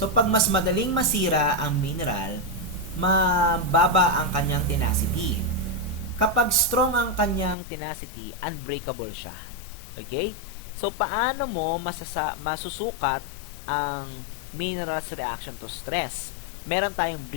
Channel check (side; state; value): right; drops out; at 7.6 s